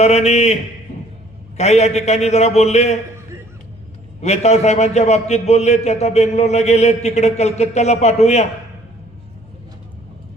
काही या ठिकाणी जरा बोलले, वेताळ साहेबांच्या बाबतीत बोलले, ते आता बेंगलोरला गेले, तिकडे कलकत्त्याला पाठवूया.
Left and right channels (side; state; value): both; normal; correlation 0.58